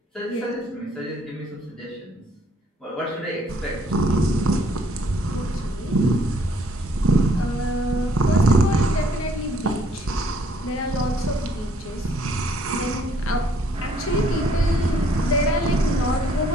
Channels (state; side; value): normal; both; correlation 0.64